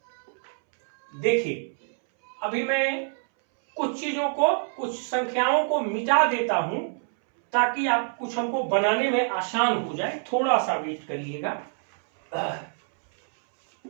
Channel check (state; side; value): silent; left; 61 dB below the other